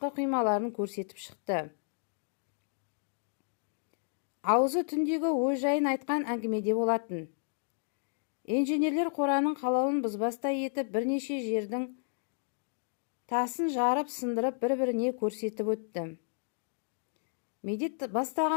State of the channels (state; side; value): silent; right; digital silence